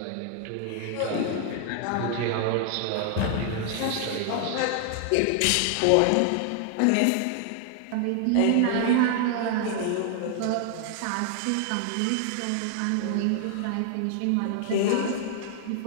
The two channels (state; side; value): different; both; correlation 0.00